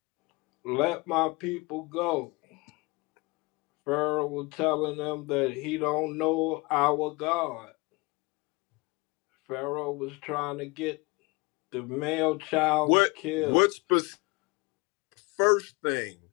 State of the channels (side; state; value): right; quieter; 25.9 dB